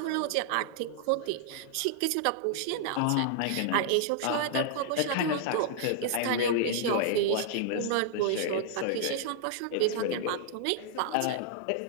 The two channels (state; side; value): different; both; correlation -0.01